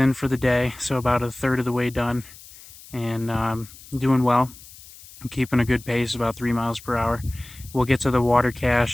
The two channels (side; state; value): left; noise; hiss, 20 dB below the sound